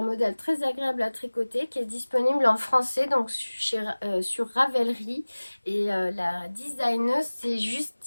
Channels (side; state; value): both; inverted; correlation -1.00